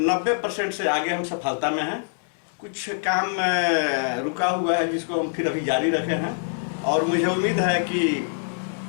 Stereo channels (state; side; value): silent; right; digital silence